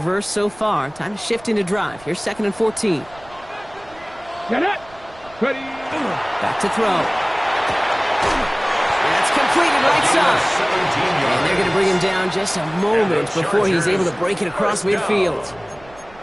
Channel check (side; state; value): right; noise; rumble, 24 dB below the sound